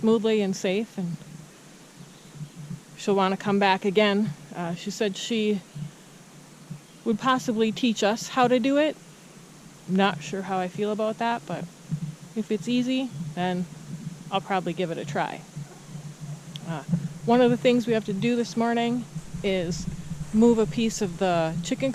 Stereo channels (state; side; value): identical; both; correlation 1.00